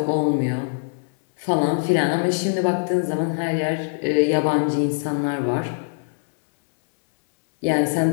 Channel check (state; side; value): silent; right; digital silence